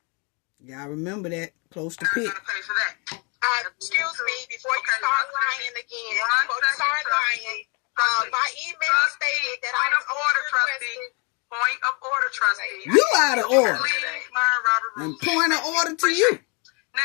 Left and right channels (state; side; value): quieter; right; 33.5 dB